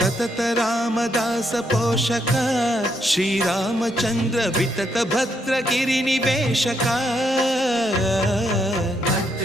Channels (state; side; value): normal; both; correlation 0.76